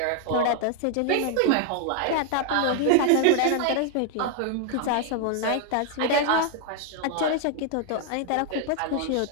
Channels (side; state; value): both; different; correlation 0.00